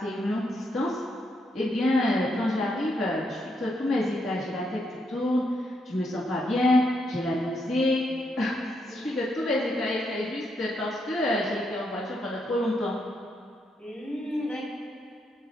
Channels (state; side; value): normal; both; correlation 0.78